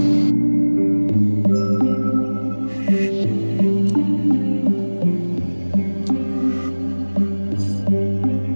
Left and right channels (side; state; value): both; inverted; correlation -1.00